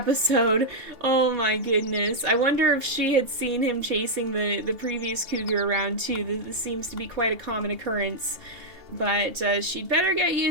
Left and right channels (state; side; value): late; left; 3.4 ms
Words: Oh my goodness! I wonder if she had seen him chasing the previous cougar around too. This seems to be quite a common occurrence. But she'd better get